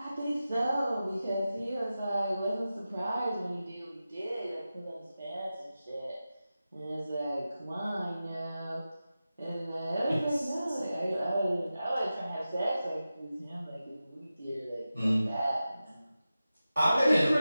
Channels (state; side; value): inverted; both; correlation -0.93